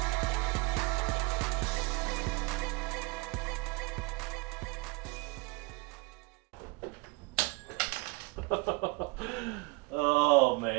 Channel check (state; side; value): quieter; left; 27.1 dB